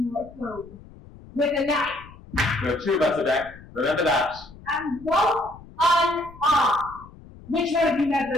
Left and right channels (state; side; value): noise; left; rumble, 20 dB below the sound